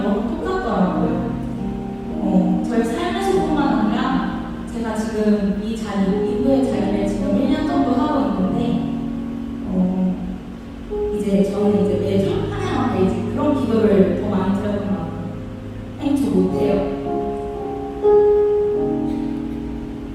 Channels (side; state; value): both; identical; correlation 1.00